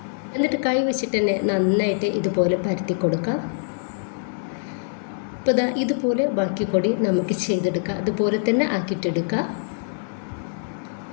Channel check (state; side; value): silent; right; digital silence